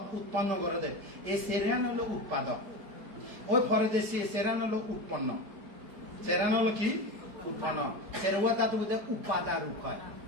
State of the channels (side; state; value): left; late; 5.1 ms